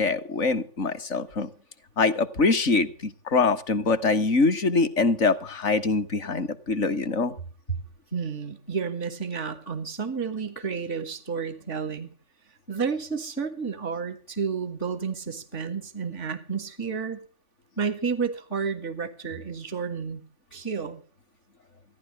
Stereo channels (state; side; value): late; right; 3.5 ms